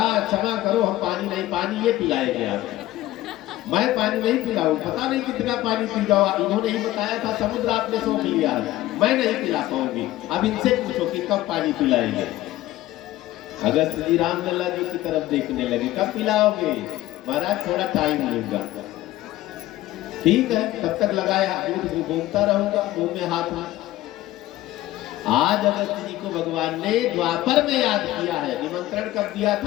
क्षमा करो, हम पानी नहीं, पानी ये पिलाएंगे आपको, मैं पानी नहीं पिलाऊं, पता नहीं कितना पानी पी जाओ, इन्होंने ही बताया था समुद्र आपने सोख लिया, मैं नहीं पिला पाऊंगी, अब इनसे पूछो कि कब पानी पिलाएंगे। अगस्त जी रामलला जी की तरफ देखने लगे, कब पिलाओगे, महाराज थोड़ा टाइम लूंगा, ठीक है, तब तक लगाया, दूध घूमता रहूंगा, मुंह में हाथ में। आज अगस्त जी को भगवान ने द्वापर में याद किया है, निमंत्रण कब दिया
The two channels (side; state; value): right; quieter; 15.7 dB